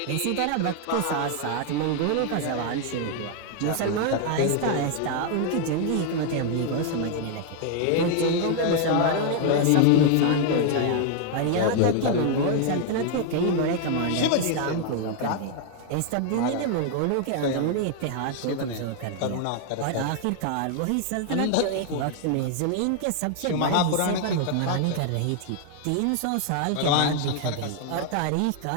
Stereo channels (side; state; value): both; different; correlation 0.00